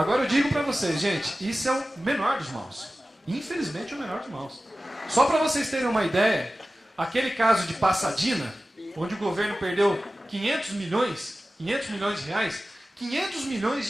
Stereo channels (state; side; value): normal; both; correlation 0.96